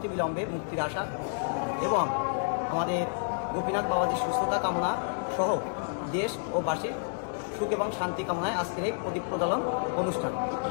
মুক্তির আশা এবং আমাদের গোপীনাথ বাবাজির সুস্থতা কামনা সহ দেশ ও বাসীর সুখ এবং শান্তি কামনায় আজকের এই প্রদীপ প্রজ্বলন অনুষ্ঠান।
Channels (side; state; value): right; silent; digital silence